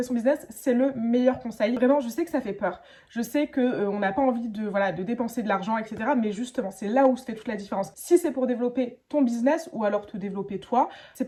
son business, c'est le meilleur conseil. Vraiment, je sais que ça fait peur. Je sais que on n'a pas envie de dépenser de l'argent, etc. Mais justement, c'est là où se fait toute la différence. Si c'est pour développer ton business ou alors te développer toi, c'est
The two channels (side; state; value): both; identical; correlation 1.00